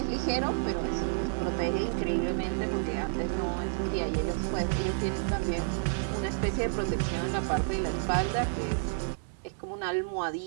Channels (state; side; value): silent; left; digital silence